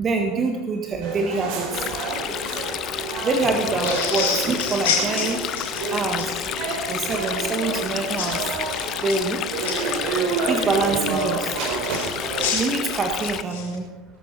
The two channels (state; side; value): normal; both; correlation 0.39